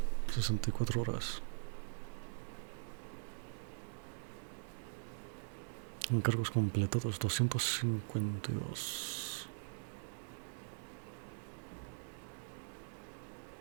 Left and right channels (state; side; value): silent; left; digital silence